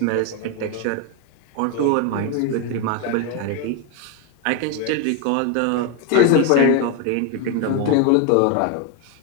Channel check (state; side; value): different; both; correlation 0.02